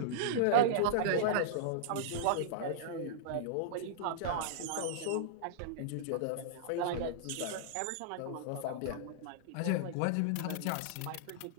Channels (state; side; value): different; both; correlation -0.02